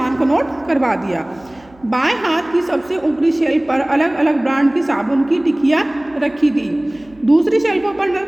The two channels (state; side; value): noise; right; hum, 28 dB below the sound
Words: को नोट करवा दिया। बाएं हाथ की सबसे ऊपरी शेल्फ पर अलग अलग ब्रांड की साबुन की टिकियाँ रखी थी। दूसरी शेल्फों पर